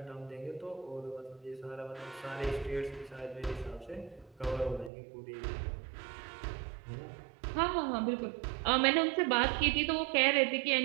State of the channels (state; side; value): drops out; left; at 4.9 s